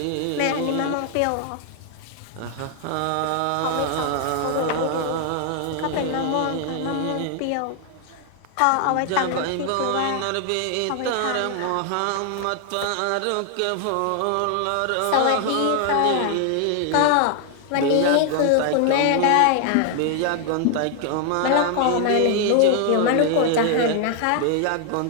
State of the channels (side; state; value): both; different; correlation 0.00